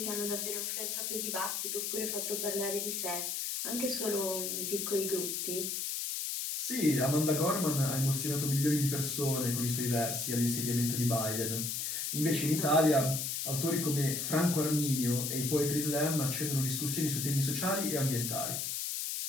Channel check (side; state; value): left; noise; hiss, 2 dB below the sound